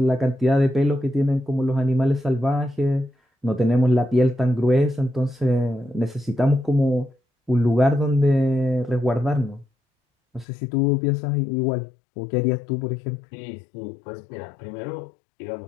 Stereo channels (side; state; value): right; drops out; at 10.5 s